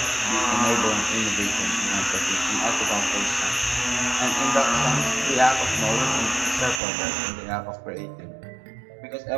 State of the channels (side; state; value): left; drops out; at 6.8 s